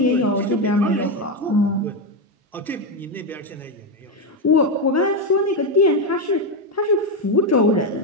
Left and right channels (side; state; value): both; normal; correlation 0.08